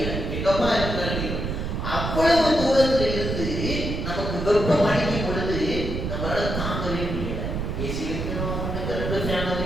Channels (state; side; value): noise; right; rumble, 3 dB below the sound